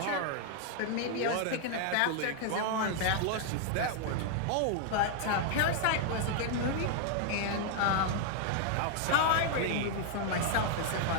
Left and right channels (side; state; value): both; different; correlation 0.00